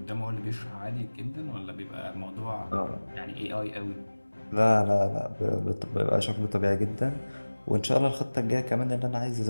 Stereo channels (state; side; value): inverted; both; correlation -1.00